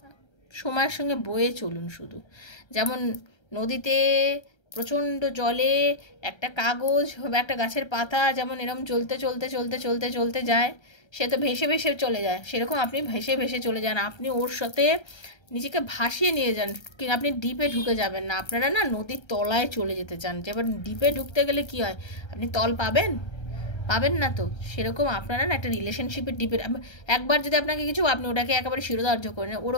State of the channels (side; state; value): right; late; 1.3 ms